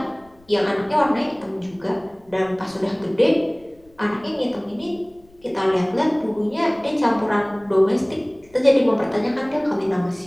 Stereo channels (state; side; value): noise; left; rumble, 29 dB below the sound